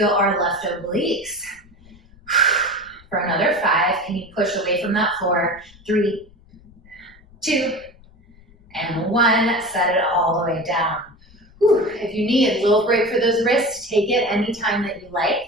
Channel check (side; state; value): left; noise; rumble, 26 dB below the sound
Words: our left obliques. For another 5, can you push away from that floor? 3, 2, and 1. Set it all the way down. Whew. If you need a little break for those wrists, take it anytime that you like.